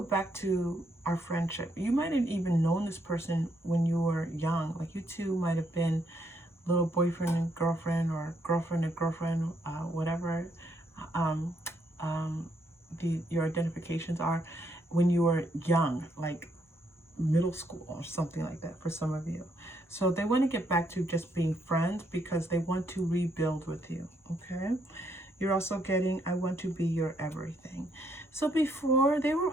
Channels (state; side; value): normal; both; correlation 0.74